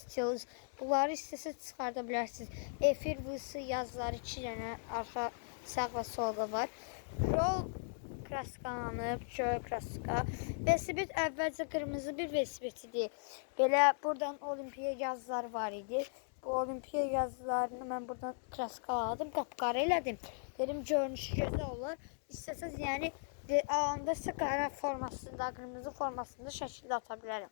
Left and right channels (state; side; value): silent; right; digital silence